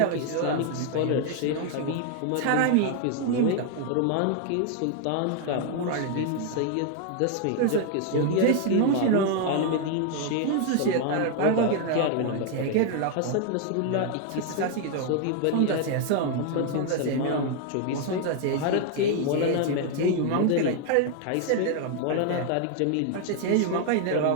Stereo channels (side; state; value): both; different; correlation 0.00